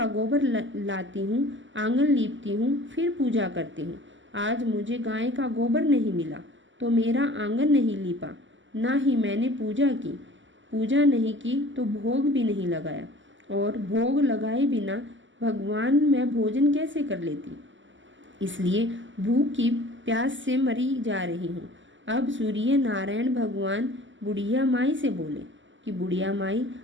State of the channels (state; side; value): late; left; 0.55 ms